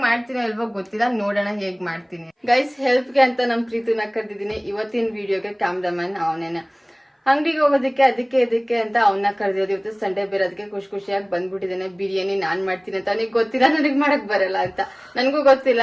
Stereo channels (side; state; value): both; identical; correlation 1.00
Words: ಮಾಡ್ತೀನಿ ಅಲ್ವೋ ಗೊತ್ತಿಲ್ಲ, ನೋಡೋಣ ಹೇಗೆ ಮಾಡ್ತೀನಿ. ಗೈಸ್, ಹೆಲ್ಪ್ಗೆ ಅಂತ ನಮ್ಮ ಪ್ರೀತಿನ ಕರೆದಿದ್ದೀನಿ. ಇವತ್ತಿನ ವಿಡಿಯೋಗೆ ಕ್ಯಾಮ್ರಾಮನ್ ಅವನೇನೆ. ಅಂಗಡಿಗೆ ಹೋಗೋದಕ್ಕೆ ಅದಕ್ಕೆ ಇದಕ್ಕೆ ಅಂತ ಅವನ್ನ ಕರೆದಿರೋದು. ಇವತ್ತು ಸಂಡೇ ಬೇರೆ, ಅದಕ್ಕೆ ಖುಷಿಯಾಗಿ ಬಂದ್ಬಿಟ್ಟಿದ್ದೇನೆ. ಬಿರಿಯಾನಿ ನಾನ್ ಮಾಡ್ತೀನಿ ಅಂತ ಅವನಿಗೆ ಗೊತ್ತಿಲ್ಲ, ನನಗೆ ಮಾಡಕ್ ಬರಲ್ಲ ಅಂತ. ನನಗೂ ಗೊತ್ತಿಲ್ಲ,